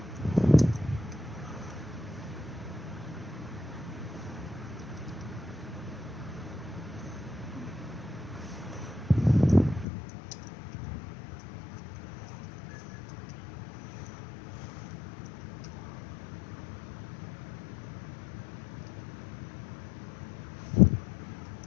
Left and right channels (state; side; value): drops out; right; at 9.9 s